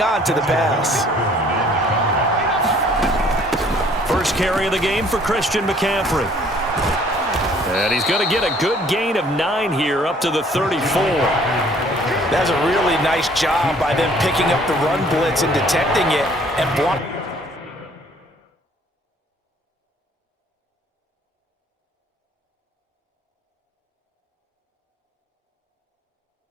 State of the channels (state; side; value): normal; both; correlation 0.58